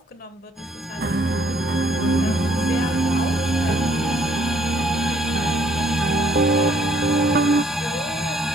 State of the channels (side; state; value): both; normal; correlation 0.65